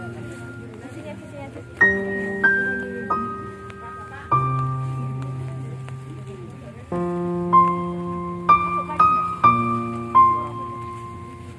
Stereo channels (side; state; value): both; identical; correlation 1.00